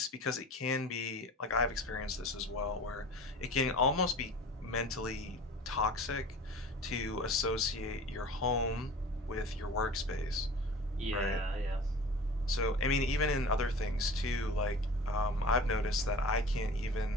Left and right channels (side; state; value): both; normal; correlation 0.39